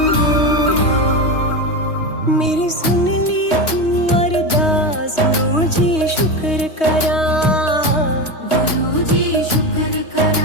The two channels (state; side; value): late; right; 3.2 ms